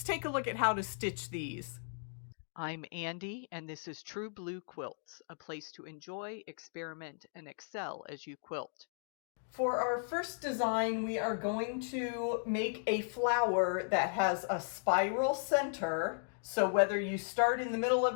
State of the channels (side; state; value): right; silent; digital silence